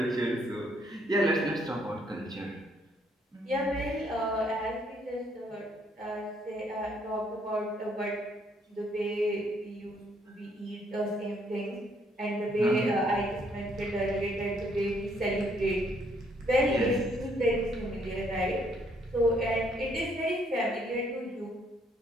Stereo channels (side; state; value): both; normal; correlation 0.68